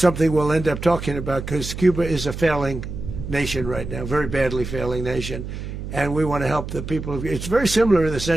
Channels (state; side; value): noise; right; hum, 8 dB below the sound